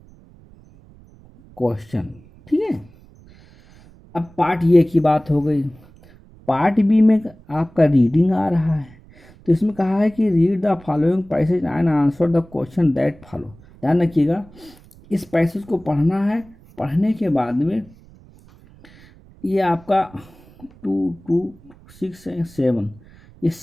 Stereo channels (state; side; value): noise; right; rumble, 25 dB below the sound